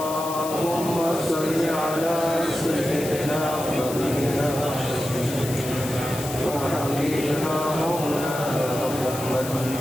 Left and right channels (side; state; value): left; noise; hiss, 10 dB below the sound